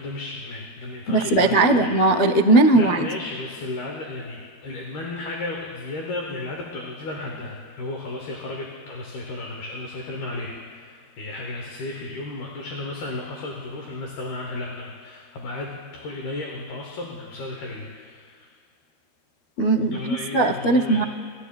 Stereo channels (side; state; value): right; late; 12 ms